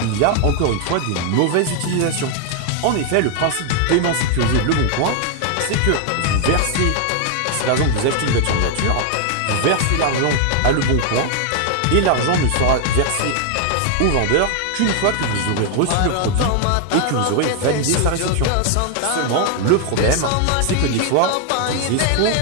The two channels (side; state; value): both; different; correlation 0.00